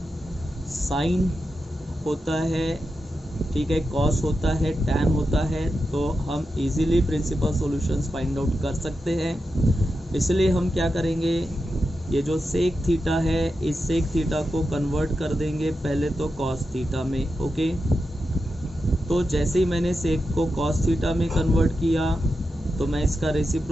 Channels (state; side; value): normal; both; correlation 0.89